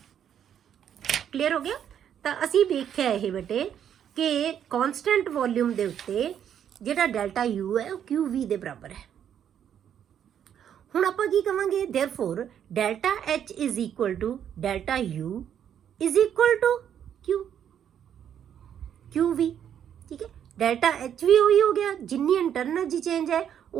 ਕਲੀਅਰ ਹੋ ਗਿਆ? ਤਾਂ ਅਸੀਂ ਵੇਖਿਆ ਇਹ ਬੇਟੇ ਕਿ ਕਾਂਸਟੈਂਟ ਵੋਲਿਊਮ ਦੇ ਉੱਤੇ ਜਿਹੜਾ ਡੈਲਟਾ ਯੂ ਹੈ ਉਹ ਕਿਊ ਵੀ ਦੇ ਬਰਾਬਰ ਹੈ। ਹੁਣ ਆਪਾਂ ਕੀ ਕਵਾਂਗੇ, therefore delta H is equal to delta U is equal to Q V. ठीक है, डेल्टा H भी वही हो गया, जिन्नी इंटरनल एनर्जी चेंज है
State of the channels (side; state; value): left; quieter; 9.3 dB